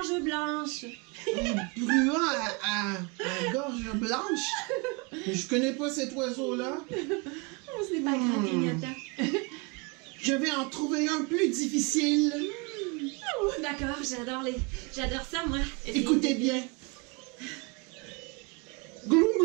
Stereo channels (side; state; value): left; quieter; 29.4 dB